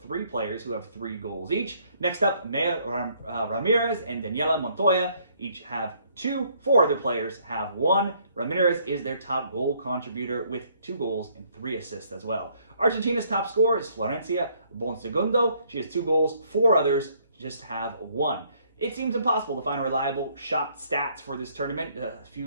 3 players who have 3 goals each. Next up, Maya Ramirez and Daniela Montoya each have 2. 4 other players have 1. Ramirez is their top goal contributor with 2 goals and 3 assists as well. Argentina's top scorer is Florencia Bonsegundo. She has 2 goals. 4 others just have 1. It seems impossible to find reliable shot stats for this tournament. A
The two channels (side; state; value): both; inverted; correlation -0.66